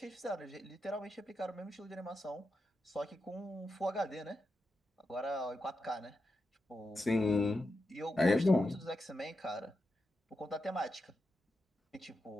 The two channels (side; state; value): both; normal; correlation 0.88